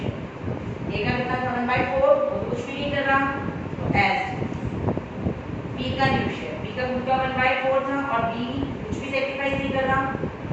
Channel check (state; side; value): identical; both; correlation 1.00